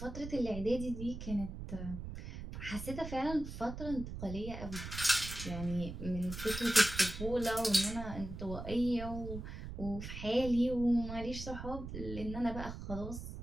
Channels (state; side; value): noise; right; rumble, 8 dB below the sound